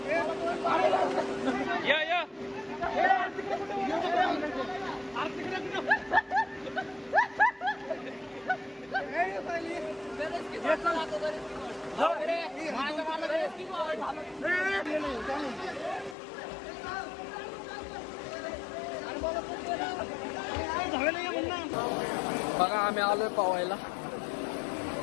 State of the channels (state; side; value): drops out; right; at 16.2 s